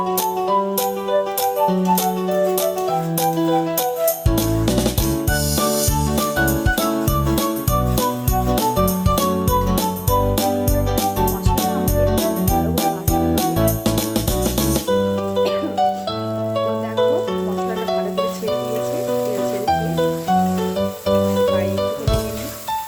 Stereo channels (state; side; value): identical; both; correlation 1.00